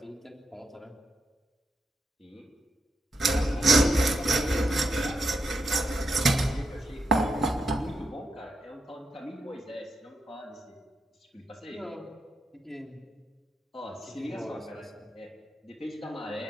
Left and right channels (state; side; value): normal; both; correlation 0.84